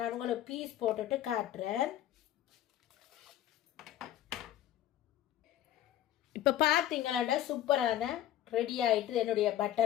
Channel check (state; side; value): quieter; right; 12.3 dB